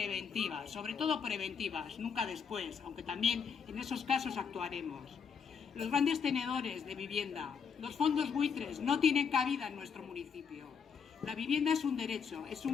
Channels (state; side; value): quieter; right; 6.5 dB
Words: sobre todo preventivas, nunca después, aunque también en esos casos actuaremos. Los grandes tenedores de vivienda, los fondos buitres no tienen cabida en nuestro municipio. La vivienda es un derecho, es